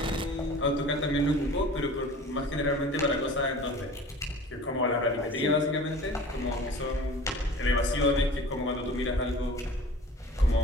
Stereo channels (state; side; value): normal; both; correlation 0.42